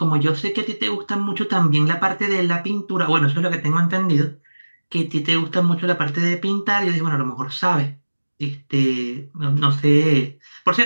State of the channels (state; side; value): inverted; both; correlation -1.00